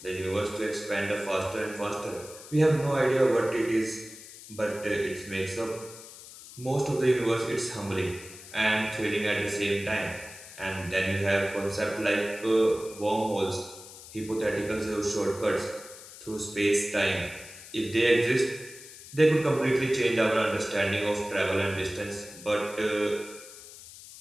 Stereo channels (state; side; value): noise; left; hiss, 16 dB below the sound